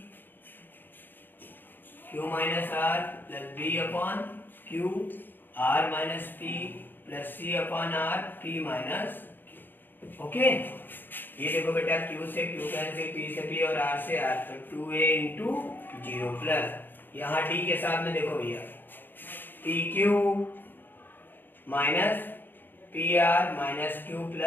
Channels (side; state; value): right; late; 0.093 ms